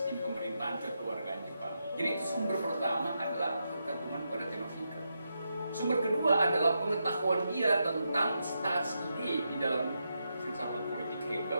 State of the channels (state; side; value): inverted; both; correlation -0.84